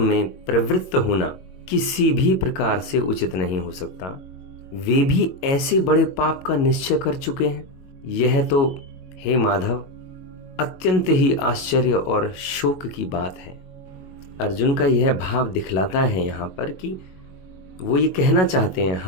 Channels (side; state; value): right; late; 22 ms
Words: में प्रवृत्त होना किसी भी प्रकार से उचित नहीं हो सकता, वे भी ऐसे बड़े पाप का निश्चय कर चुके हैं। यह तो हे माधव अत्यंत ही आश्चर्य और शोक की बात है। अर्जुन का यह भाव दिखलाता है यहाँ पर कि वो ये कहना चाहते हैं,